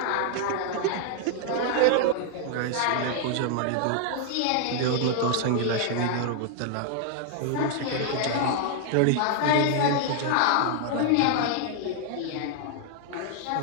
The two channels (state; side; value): different; both; correlation 0.00